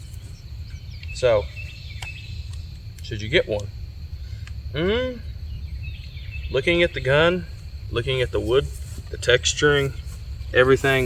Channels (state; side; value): identical; both; correlation 1.00